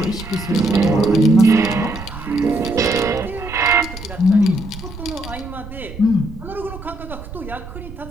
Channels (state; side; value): noise; right; rumble, 13 dB below the sound